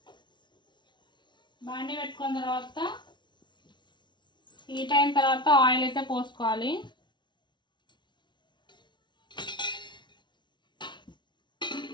బాండీ పెట్టుకున్న తర్వాత హీట్ అయిన తర్వాత ఆయిల్ అయితే పోసుకోవాలి.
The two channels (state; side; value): late; right; 0.22 ms